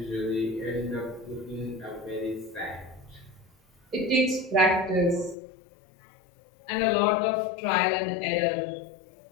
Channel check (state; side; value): drops out; right; at 5.4 s